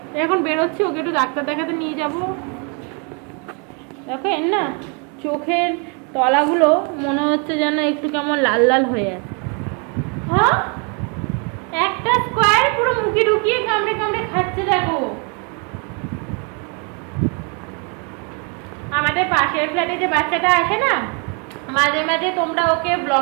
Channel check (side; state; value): left; quieter; 35.8 dB